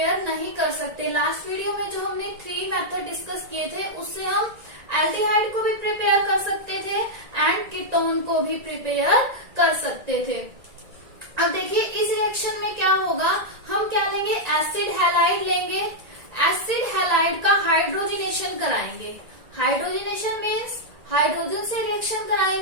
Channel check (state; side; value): late; left; 1.9 ms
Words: नहीं कर सकते. लास्ट वीडियो में जो हमने 3 मेथड डिस्कस किए थे, उससे हम एल्डिहाइड को भी प्रिपेयर कर सकते थे एंड कीटोन को भी प्रिपेयर कर सकते थे. अब देखिए इस रिएक्शन में क्या होगा. हम क्या लेंगे, एसिड हैलाइड लेंगे. एसिड हैलाइड का हाइड्रोजिनेशन कराएंगे. हाइड्रोजिनेशन मीन्स हाइड्रोजन से रिएक्शन